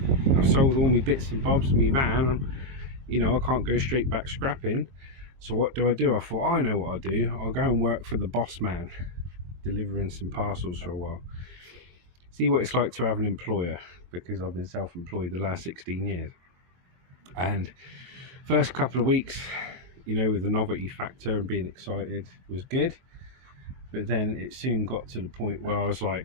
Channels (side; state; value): left; late; 22 ms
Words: I've sold all my bits and bobs of my van. You know, I can't go straight back scrapping. So what do? I thought, I know what I'll do. I'll go and work for the boss man, delivering some parcels for a while. See what it's like to have an employer, because I've been self-employed the last 16 years. And first couple of weeks, you know, with the novelty factor and being excited was good. But then it soon got to the point where I was